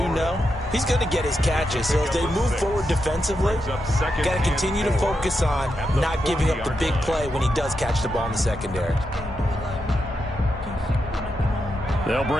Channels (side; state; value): both; normal; correlation 0.85